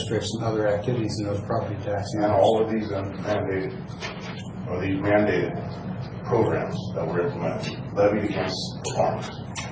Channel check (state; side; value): identical; both; correlation 1.00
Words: and other activities in those property tax And numbers. all of these mandated, or these mandated programs that were implemented, levied against the farmers.